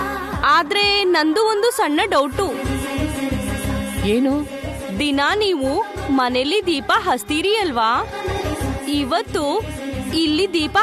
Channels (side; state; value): both; identical; correlation 1.00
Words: ಆದ್ರೆ ನಂದು ಒಂದು ಸಣ್ಣ ಡೌಟು. ಏನು? ದಿನ ನೀವು ಮನೇಲಿ ದೀಪ ಹಚ್ತೀರಿ ಅಲ್ವಾ, ಇವತ್ತು ಇಲ್ಲಿ ದೀಪ